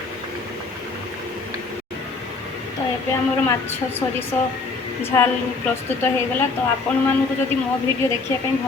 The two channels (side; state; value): right; quieter; 4.1 dB